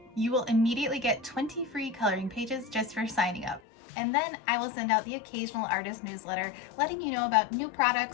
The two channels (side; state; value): right; drops out; at 3.6 s